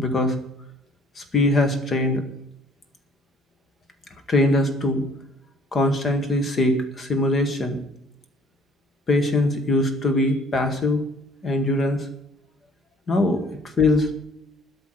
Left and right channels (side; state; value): both; normal; correlation 0.57